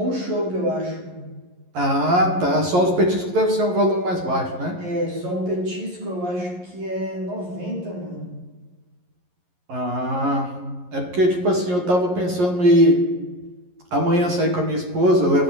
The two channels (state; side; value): late; left; 11 ms